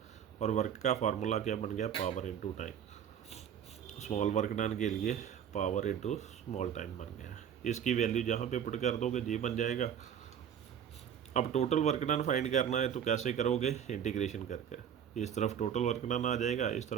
और वर्क का फार्मूला क्या बन गया, power into time. Small work done के लिए पावर इनटू स्मॉल टाइम बन गया। इसकी वैल्यू जहाँ पे पुट कर दोगे ये बन जाएगा। अब टोटल वर्क डन फाइंड करना है तो कैसे करोगे, इंटीग्रेशन करके। इस तरफ टोटल वर्क डन आ जाएगा, इस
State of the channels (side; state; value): left; quieter; 8.8 dB